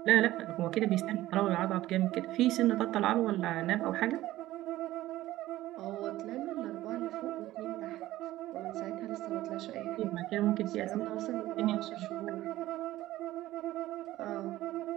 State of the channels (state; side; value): quieter; left; 15.7 dB